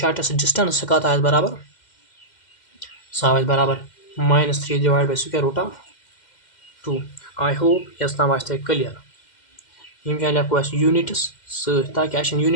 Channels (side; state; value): right; late; 2.1 ms